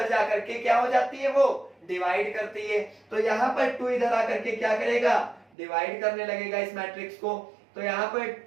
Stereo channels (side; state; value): left; drops out; at 5.5 s